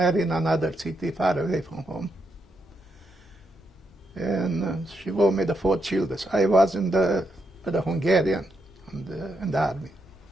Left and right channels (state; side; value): normal; both; correlation 0.81